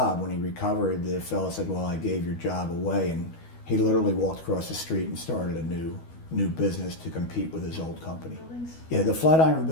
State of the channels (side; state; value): right; late; 12 ms